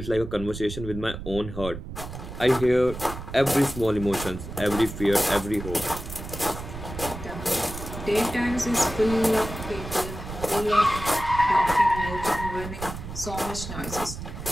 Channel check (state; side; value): noise; right; rumble, 9 dB below the sound